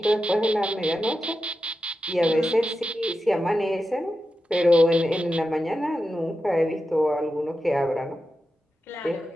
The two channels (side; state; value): both; normal; correlation 0.90